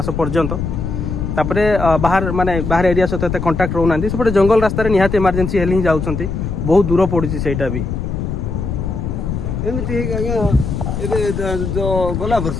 पर्यंत तापरे बाहर माने बाहर एरिया सहित कंटाक्ट रोना सेपटे जंगल रास्ता निहाती इमरजेंसी हेले ही जाऊँ बहुत दूर पड़ी से भी एमती जो गला वर्ष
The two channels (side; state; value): left; noise; rumble, 3 dB below the sound